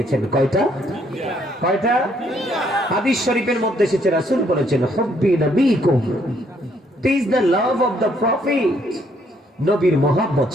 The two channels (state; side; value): normal; both; correlation 0.68